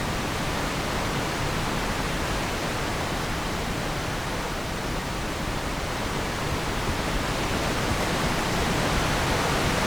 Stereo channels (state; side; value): noise; right; hiss, 20 dB below the sound